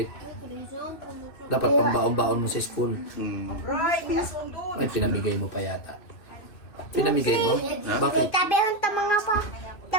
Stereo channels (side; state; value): right; late; 2.6 ms